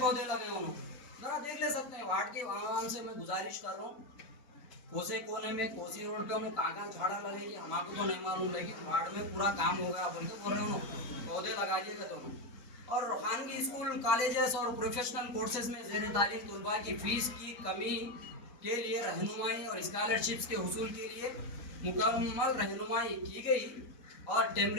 लगे उन्होंने जरा देख ले सकते हैं। वार्ड के आवाम से मैं गुजारिश कर रहा हूँ, कोसे कोने में कोसी रोड पे उन्होंने कहाँ झाड़ा लगेगी हमारे तो नहीं मालूम, लेकिन वार्ड में पूरा काम हो गया बोल के बोल रहे उन्होंने पौधे लगा दिए गए दोनों। और खानगी स्कूल कॉलेजेस और प्रोफेशनल कोर्सेज में ज़ेर तालीम तलबा की फ़ीस की कमी के लिए रहनुमाई और स्कॉलरशिप्स के हुसूल के लिए मुकम्मल रहनुमाई की गई और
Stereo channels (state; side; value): late; right; 4.0 ms